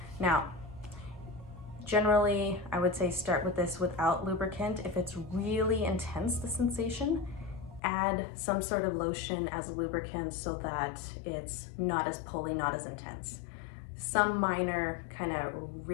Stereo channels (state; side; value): drops out; right; at 7.8 s